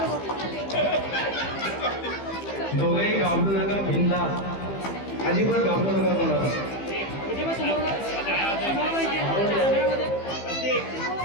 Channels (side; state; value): right; late; 15 ms